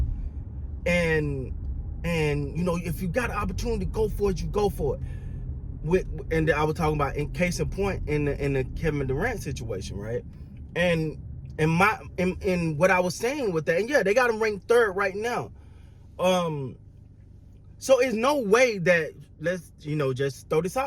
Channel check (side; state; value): both; identical; correlation 1.00